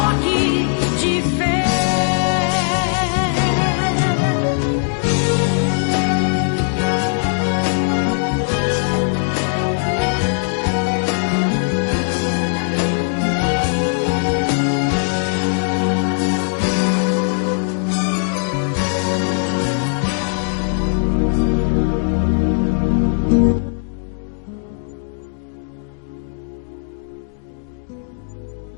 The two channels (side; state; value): right; silent; digital silence